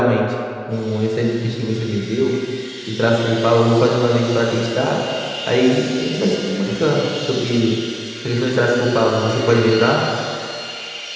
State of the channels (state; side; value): identical; both; correlation 1.00